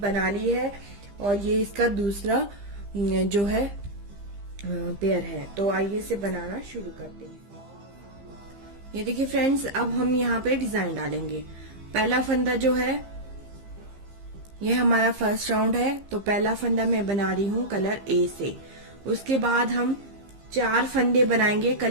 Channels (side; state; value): left; late; 15 ms